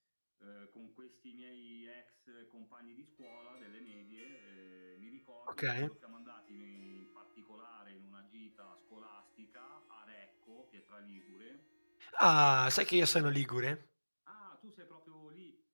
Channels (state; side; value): inverted; both; correlation -1.00